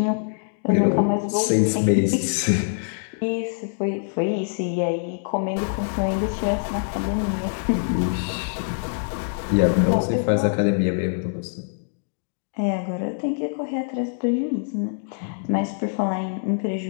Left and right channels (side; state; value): right; silent; digital silence